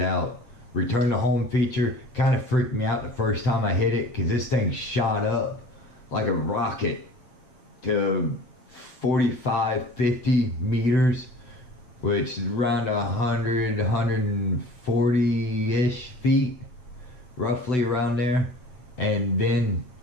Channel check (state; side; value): late; right; 8.0 ms